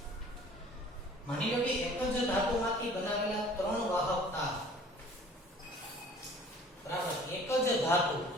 માની લો કે દ્રવ્યમાંથી બનાવેલા 3 વાહક તાર, બરાબર, એક જ ધાતુ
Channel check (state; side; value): normal; both; correlation 0.50